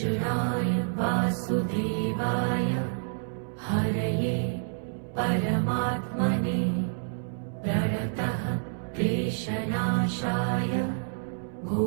वासुदेवाय हरये परमात्मने प्रणतः क्लेशनाशाय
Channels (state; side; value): silent; left; 59 dB below the other